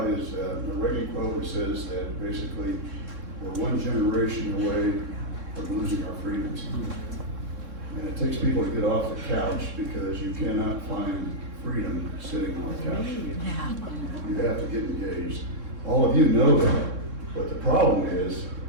is a Reagan quote which says that basically we're one generation away from losing our freedoms. And it takes people to get off the couch because you cannot find freedom sitting on the couch. Yeah. You have to get engaged. All of you know that, but the problem is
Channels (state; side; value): late; left; 3.7 ms